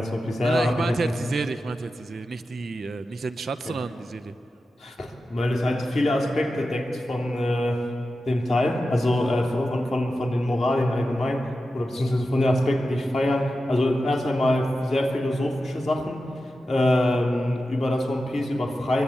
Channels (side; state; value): both; normal; correlation 0.92